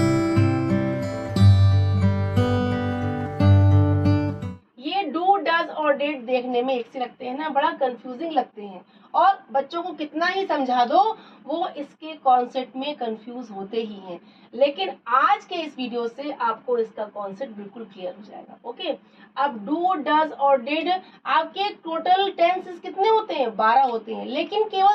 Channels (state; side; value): identical; both; correlation 1.00